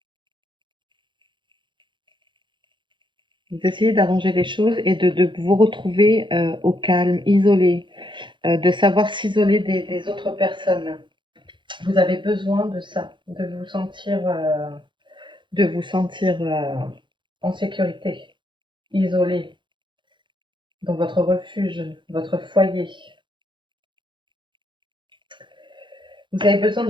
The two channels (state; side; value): late; left; 0.23 ms